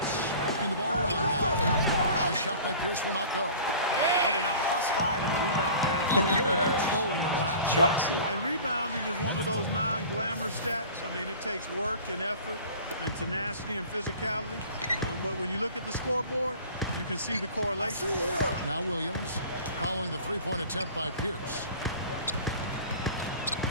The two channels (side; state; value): both; inverted; correlation -0.42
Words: working the ball around now. The shot by Pierce will not go. Oh, they're now +5 in the rebound category, really controlling the glass. Chucks it. And rebounding is one of those non-glamour stats. I mean, it takes work and effort and tenacity and physicality. But when you look at the scoreboard, you can see the correlation. Now Williams following the three-point attempt by Pierce.